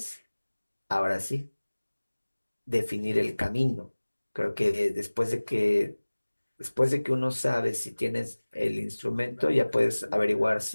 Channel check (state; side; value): inverted; both; correlation -1.00